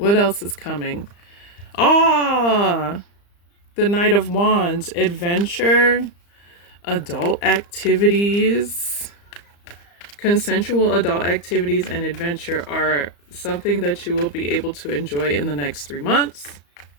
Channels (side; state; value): right; late; 35 ms